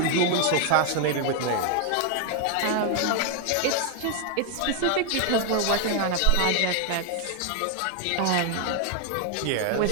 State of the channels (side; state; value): both; different; correlation 0.00